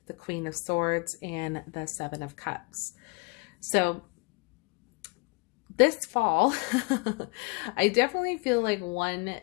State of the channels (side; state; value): right; quieter; 28.3 dB